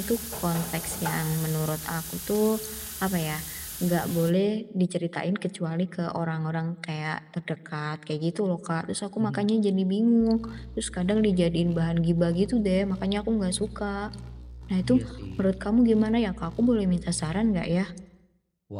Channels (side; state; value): both; identical; correlation 1.00